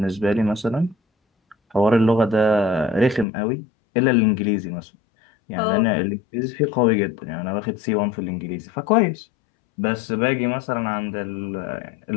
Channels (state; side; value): drops out; right; at 3.2 s